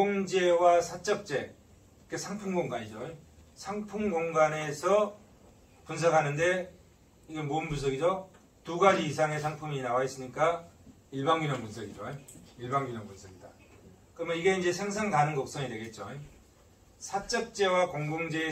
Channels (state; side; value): identical; both; correlation 1.00